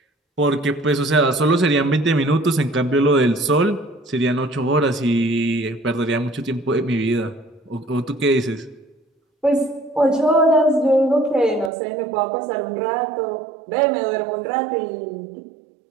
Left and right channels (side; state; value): left; drops out; at 11.7 s